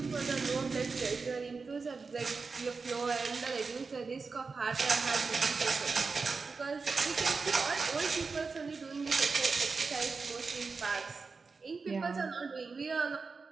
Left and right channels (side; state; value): left; quieter; 4.5 dB